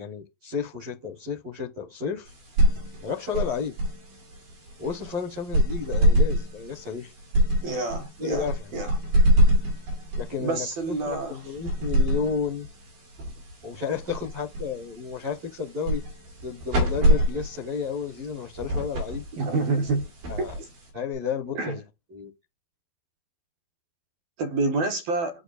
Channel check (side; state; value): left; late; 12 ms